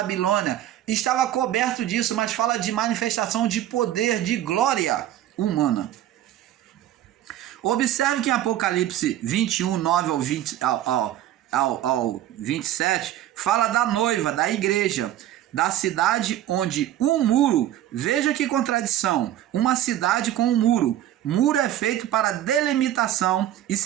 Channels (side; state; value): left; quieter; 12.6 dB